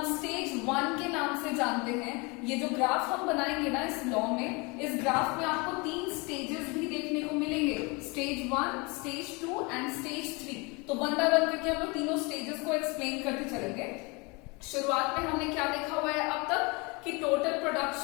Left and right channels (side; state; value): right; quieter; 28.2 dB